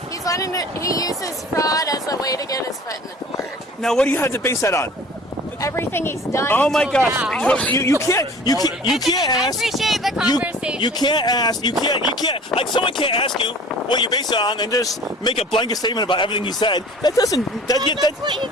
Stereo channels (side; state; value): both; normal; correlation 0.46